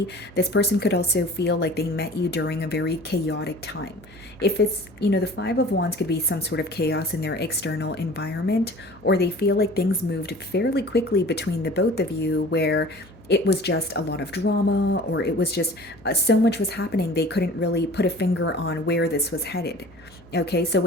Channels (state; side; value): noise; left; hum, 26 dB below the sound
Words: This person could also feel like they met you during a very chaotic time. If it's, the Five of Wands could be some sort of chaos in their external environment, or they feel like things moved fairly quickly between the both of you where it was just a lot of drama, or it was just so much was happening, they couldn't really put a finger on where this was headed. Okay, so